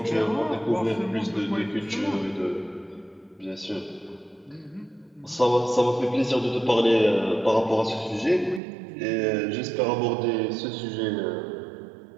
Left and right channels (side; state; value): left; drops out; at 8.6 s